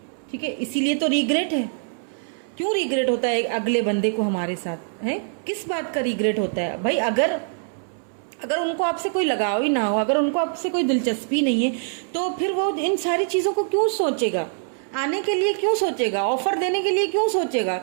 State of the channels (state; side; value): silent; left; 63 dB below the other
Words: ठीक है, इसीलिए तो रिग्रेट है। क्यों रिग्रेट होता है अगले बंदे को हमारे साथ, है किस बात का रिग्रेट होता है भाई? अगर उनको आपसे कोई लगाव ही ना हो, अगर उनको आपसे कोई दिलचस्पी नहीं है, तो फिर वो इन सारी चीज़ों को क्यों सोचेगा? आने के लिए क्यों सोचेगा? ऑफर देने के लिए क्यों सोचेगा?